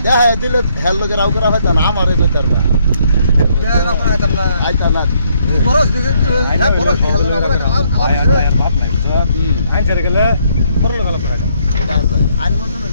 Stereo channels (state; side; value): inverted; both; correlation -0.70